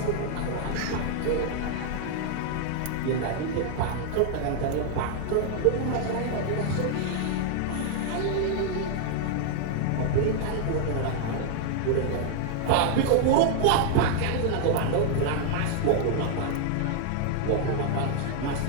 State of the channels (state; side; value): different; both; correlation 0.00